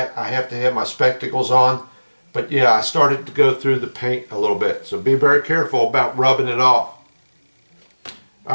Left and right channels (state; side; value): inverted; both; correlation -1.00